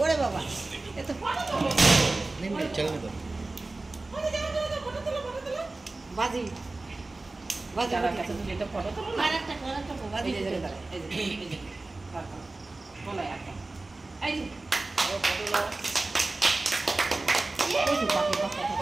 ওরে বাবা এত ফটো তোলো চল না ফটো তোলো বাজি বাজি দাদার কাছে তুমি একটা ফটো তোলো না আরেকটা বাজি এই যে বলো একটা এই যে ফটো নাও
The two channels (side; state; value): left; quieter; 3.2 dB